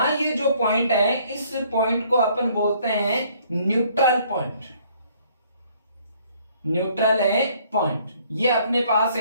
ये जो पॉइंट है, इस पॉइंट को अपन बोलते हैं न्यूट्रल पॉइंट, ये अपने पास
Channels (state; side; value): inverted; both; correlation -0.62